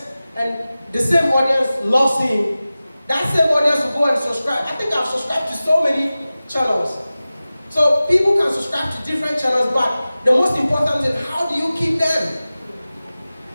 and the same audience loves him, that same audience will go and subscribe. I think I've subscribed to so many channels. So people can subscribe to different channels, but the most important is, how do you keep them?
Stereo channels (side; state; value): both; inverted; correlation -0.96